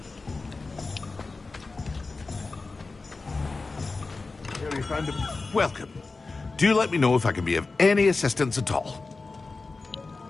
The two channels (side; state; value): right; quieter; 3.8 dB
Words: and welcome. Do let me know if I can be of any assistance at all.